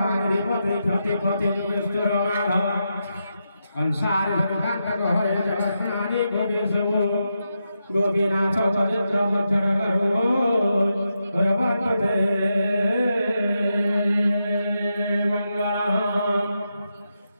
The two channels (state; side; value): inverted; both; correlation -0.86